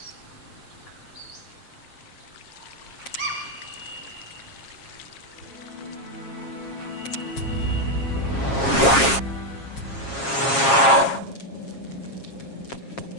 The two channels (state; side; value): late; right; 7.4 ms